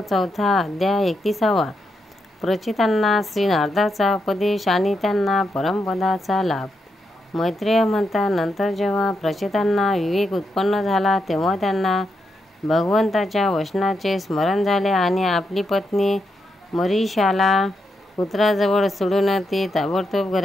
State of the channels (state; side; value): normal; both; correlation 0.83